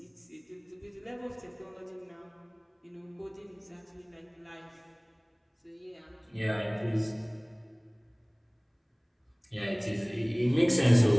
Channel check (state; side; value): identical; both; correlation 1.00